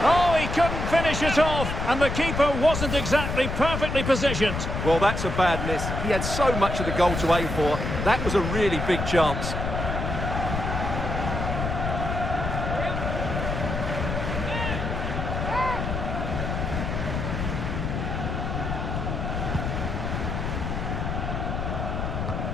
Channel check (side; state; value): left; noise; rumble, 3 dB below the sound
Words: Oh, he couldn't finish it off, and the keeper wasn't exactly perfectly positioned. Well, that's a bad miss. He had so much of the goal to aim for. That was a really big chance.